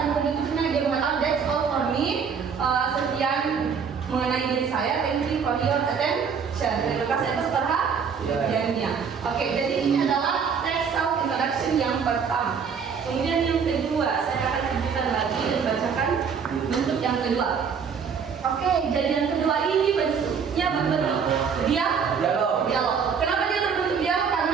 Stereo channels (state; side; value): quieter; left; 6.4 dB